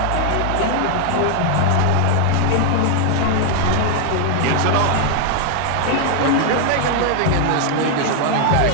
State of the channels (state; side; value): different; both; correlation 0.00